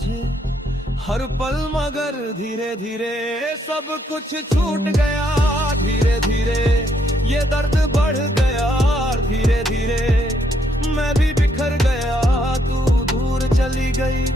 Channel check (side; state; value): both; normal; correlation 0.73